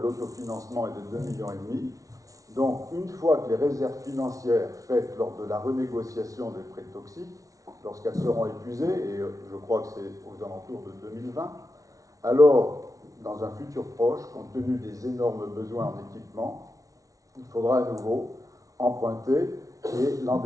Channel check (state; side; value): late; left; 0.17 ms